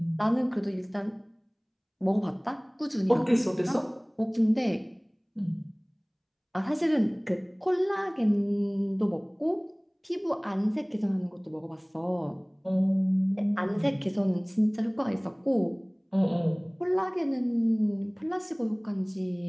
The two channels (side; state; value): both; identical; correlation 1.00